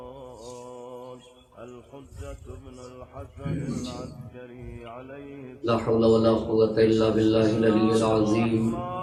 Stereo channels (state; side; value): identical; both; correlation 1.00